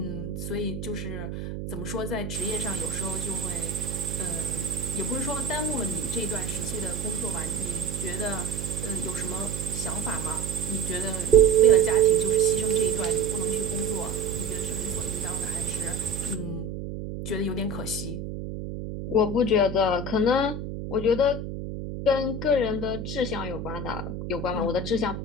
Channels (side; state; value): right; noise; hum, 6 dB below the sound